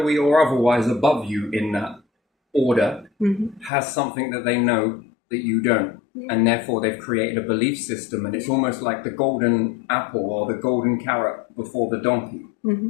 or otherwise, above you in that order has something that they know that you don't. And therefore, they've created a belief system, and it's almost like the golden apple or the golden carrot before the donkey.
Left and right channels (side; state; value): right; drops out; at 3.7 s